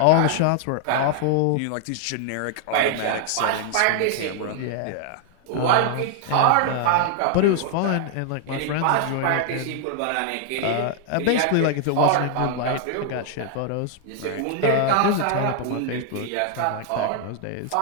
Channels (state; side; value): different; both; correlation 0.00